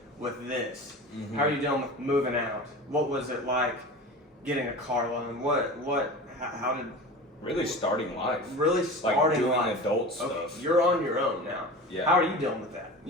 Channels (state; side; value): normal; both; correlation 0.34